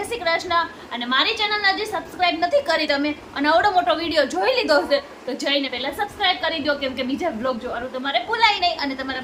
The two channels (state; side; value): identical; both; correlation 1.00